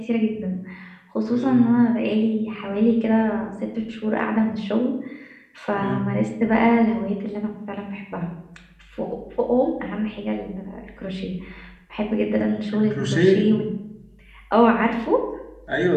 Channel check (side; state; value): both; identical; correlation 1.00